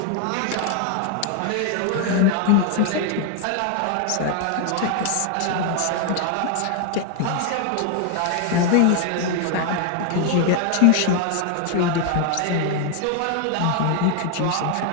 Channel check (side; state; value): both; different; correlation 0.00